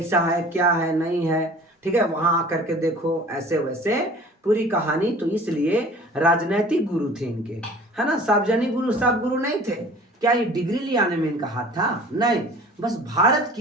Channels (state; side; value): normal; both; correlation 0.46